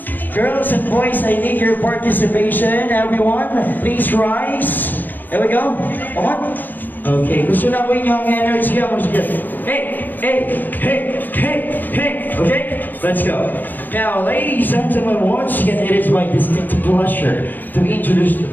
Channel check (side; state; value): right; late; 0.088 ms